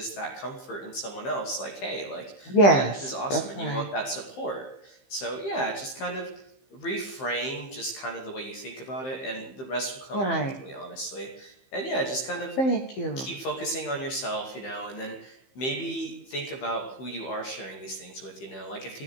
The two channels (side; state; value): right; late; 15 ms